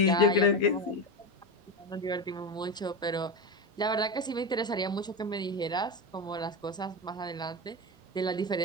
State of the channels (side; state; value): both; normal; correlation 0.18